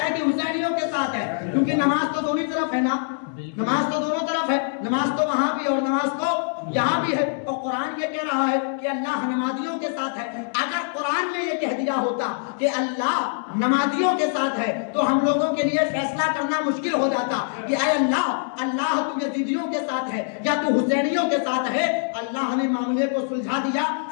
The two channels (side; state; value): right; silent; digital silence